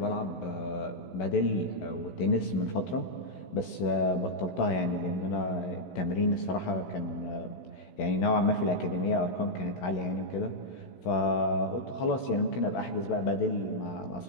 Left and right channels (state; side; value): late; right; 16 ms